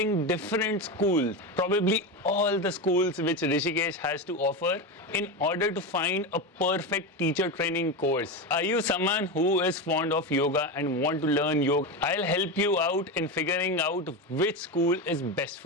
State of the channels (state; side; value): normal; both; correlation 0.17